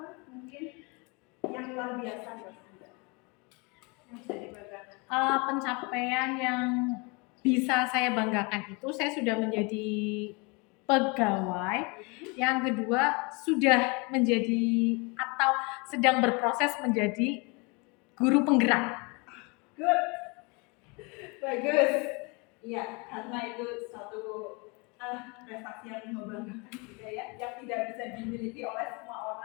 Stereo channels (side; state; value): right; quieter; 29.8 dB